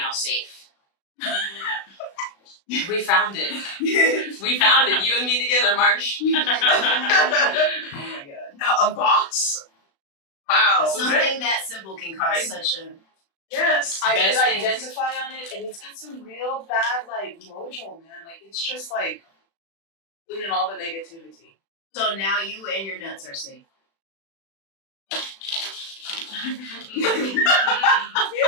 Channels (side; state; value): right; late; 36 ms